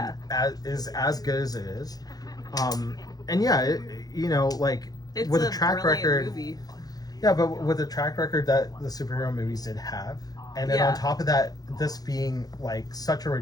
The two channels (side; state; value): right; late; 0.19 ms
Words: And is as good as it is. And yeah, you know, like it's with a track record. Movie. Yeah, but with the track record that the superhero movies did have, and then on top of that, this being like such a